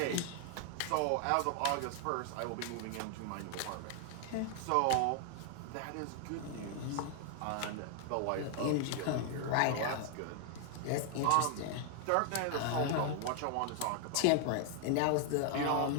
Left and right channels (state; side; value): different; both; correlation 0.00